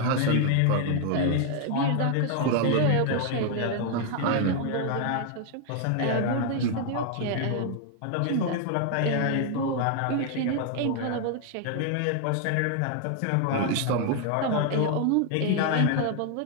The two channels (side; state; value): both; different; correlation 0.00